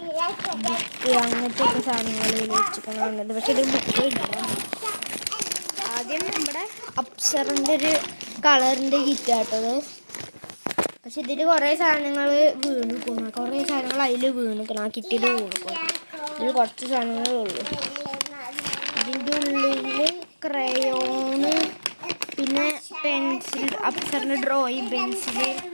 ബുക്ക്, അങ്ങനത്തെ ഒക്കെ സാധനങ്ങൾ വെച്ചിട്ടുണ്ട്. പക്ഷെ ഇത് ബുക്ക് ഇല്ല. ആദ്യം നമ്മുടെ അപ്സറിൻ്റെ ഒരു കളറിൻ്റെ കിറ്റാട്ടത്. പക്ഷെ ഇതിൽ കുറേ സാധനങ്ങൾ വീണിക്കണം. കുറേ സാധനങ്ങൾ അതിൽ വീണിക്കണം. ആ കിറ്റിൽ വീണിക്കണം. ഇതിൽ കുറച്ച് സാധനങ്ങളേ ഉള്ളൂ. ഇതിൻ്റെ ഉള്ളിൽ ക്രയോണ്, പിന്നെ പെൻസിൽ, അപ്സറിൻ്റെ ഡ്രോയിങ് പെൻസില്,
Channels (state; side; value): inverted; both; correlation -1.00